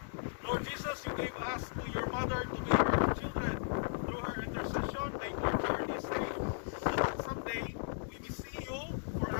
Lord Jesus, you gave us to your mother to be our children. Through her intercession, make our journey safe, so that someday we may see you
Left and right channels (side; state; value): right; silent; digital silence